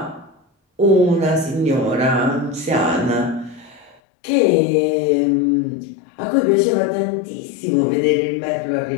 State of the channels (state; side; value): drops out; right; at 4.0 s